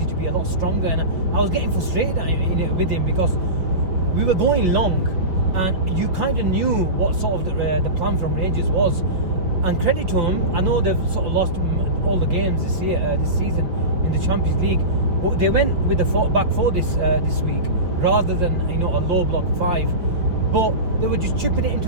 to be a lot stronger, and I was getting frustrated with him because we were going long, and you kind of knew what sort of the plan from Rangers was. And credit to him, I know they've sort of lost all the games this season in the Champions League, but they went with the back four this week rather than a low block 5. But they were just chipping it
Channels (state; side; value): late; left; 5.4 ms